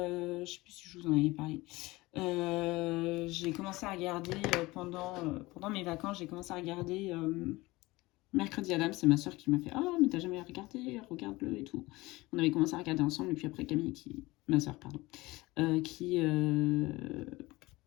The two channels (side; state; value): right; quieter; 20.8 dB